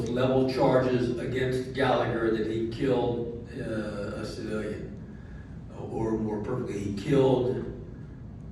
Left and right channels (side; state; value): both; identical; correlation 1.00